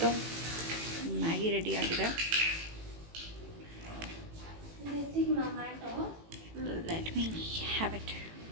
ಮ್ಯಾಗಿ ರೆಡಿ ಆಗಿದೆ. Let me have it.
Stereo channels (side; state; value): left; late; 18 ms